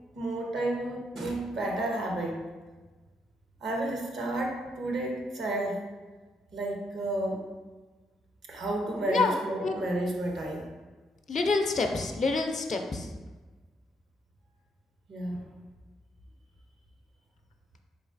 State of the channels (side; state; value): both; normal; correlation 0.74